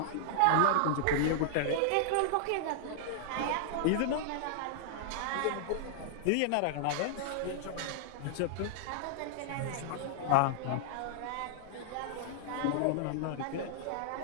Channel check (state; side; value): different; both; correlation -0.01